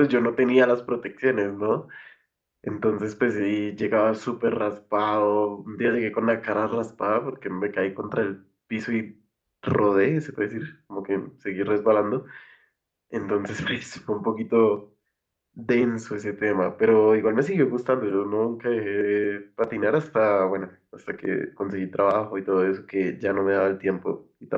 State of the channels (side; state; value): both; identical; correlation 1.00